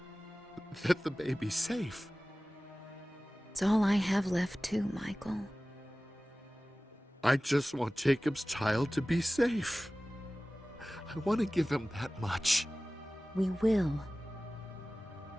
that the baby's safe. It's all I have left too, Michael. I just want Jacob's child to be safe. I want to give him that much. We will.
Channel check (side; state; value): both; normal; correlation 0.97